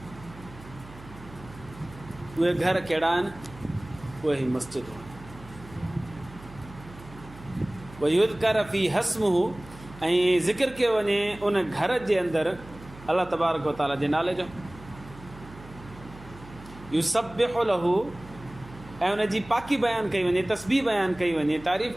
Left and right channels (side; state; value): right; noise; hum, 18 dB below the sound